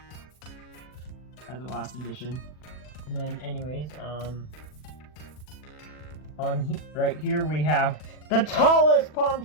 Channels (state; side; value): late; right; 40 ms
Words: As a last addition. And then, anyways, right here we have the tallest palm